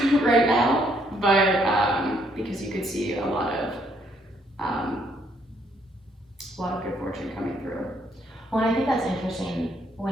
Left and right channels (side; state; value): both; normal; correlation 0.70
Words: right now. But because you could see a lot of good fortune coming through. Well, I think that's interesting